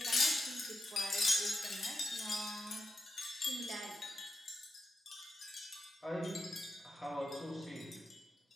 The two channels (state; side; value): normal; both; correlation 0.88